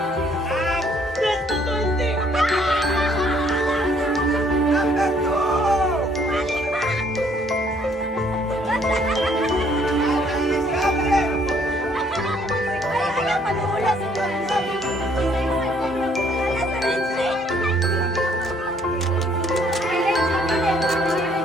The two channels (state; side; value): normal; both; correlation 0.64